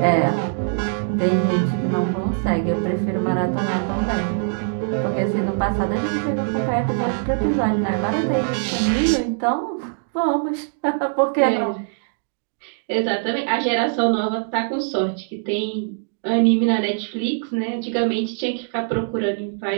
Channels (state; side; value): silent; left; digital silence